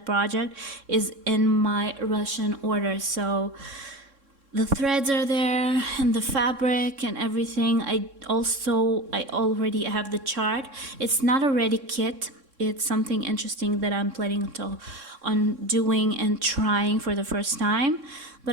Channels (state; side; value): late; left; 3.6 ms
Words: project is in my Russian order. So the threads are there and the fabric and everything. I already have the chart. It's not a ready kit. It's something interesting that I'm planning on doing and trying for the first time,